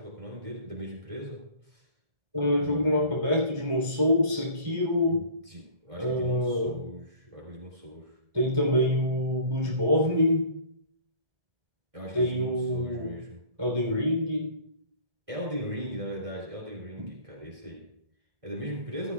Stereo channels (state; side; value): late; left; 1.7 ms